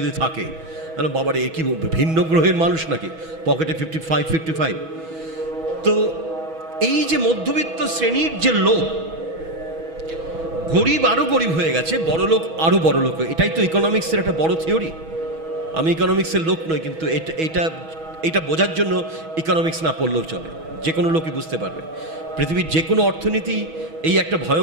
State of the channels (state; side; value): late; left; 6.2 ms